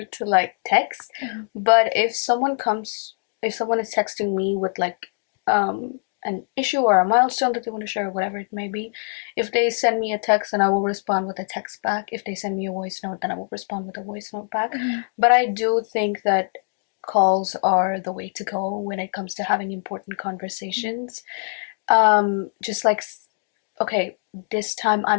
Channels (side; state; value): right; silent; digital silence